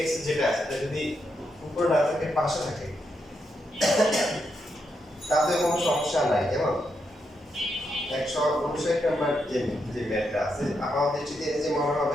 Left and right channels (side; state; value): both; normal; correlation 0.82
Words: x যেটা আছে, এটা যদি উপরে না থাকে, পাশে থাকে, তাতে কোনো সমস্যা নাই। যেমন 159 নাম্বার যে ম্যাথটা আছে, আমার দৃষ্টিতে এই যে মনে